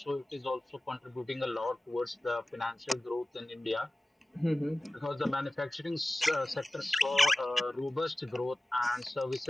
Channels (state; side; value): normal; both; correlation 0.96